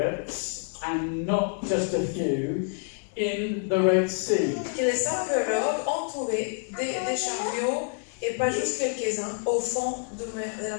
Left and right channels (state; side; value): silent; right; 56 dB below the other